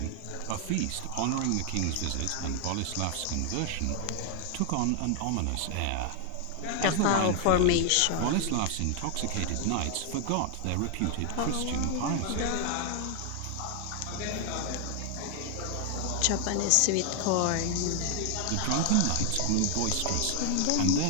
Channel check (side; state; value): both; different; correlation 0.00